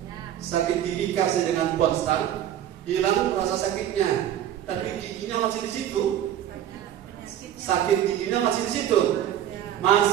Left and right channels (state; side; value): quieter; left; 11.2 dB